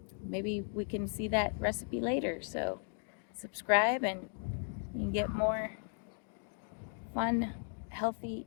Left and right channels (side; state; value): right; silent; 53 dB below the other